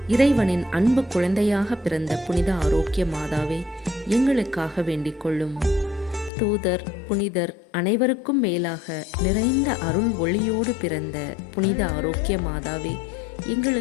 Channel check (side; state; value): right; drops out; at 6.3 s